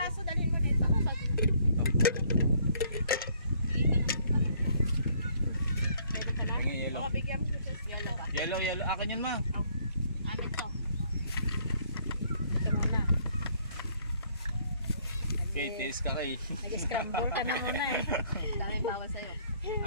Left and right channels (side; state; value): both; inverted; correlation -0.64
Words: dalhin mo dito. Meron ka na? Tingin yelo. Oo, bigyan mo sis. Yelo ka. Yelo, yelo. Akin yan ma. Amin to. Ito muna. Okay, taste ka kay. Nag-scramble ka na muna eh. Daming bawal sa'yo.